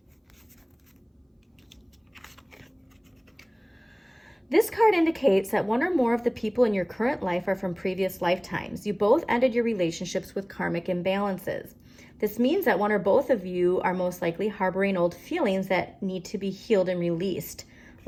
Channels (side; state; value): both; identical; correlation 1.00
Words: This card indicates that one or more of the people in your current life are from previous lifetimes. You both ended your relationships with karmic imbalances. This means that one or both of you are most likely harboring old feelings that need to be healed and released.